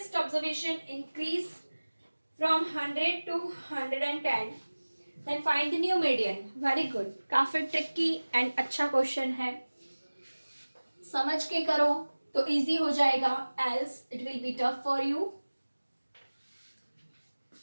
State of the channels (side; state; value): both; inverted; correlation -1.00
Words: observation increase from 100 to 110 then find the new median. Very good. काफी ट्रिकी एंड अच्छा क्वेश्चन है, समझ के करो तो इजी हो जाएगा, else it will be tough for you.